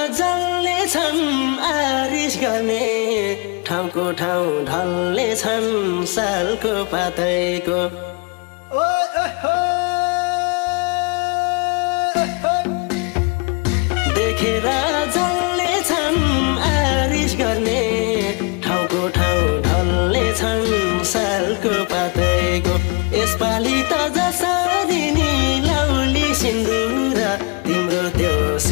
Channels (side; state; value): right; quieter; 31.6 dB